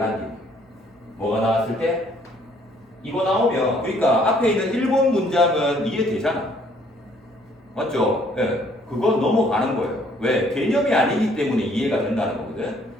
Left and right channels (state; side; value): normal; both; correlation 0.63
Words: 얘기. 뭐가 나왔을 때? 이거 나오면, 그러니까 앞에 있는 1번 문장은 이해되잖아. 맞죠? 예. 그건 넘어가는 거예요. 왜? 개념이 아니기 때문에 이해가 된다는 거거든.